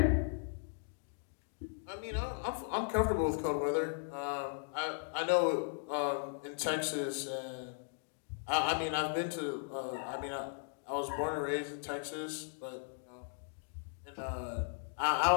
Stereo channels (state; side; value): silent; right; digital silence